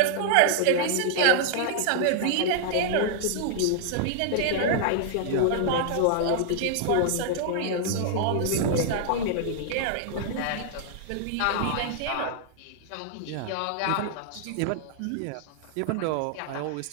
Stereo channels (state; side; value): different; both; correlation -0.01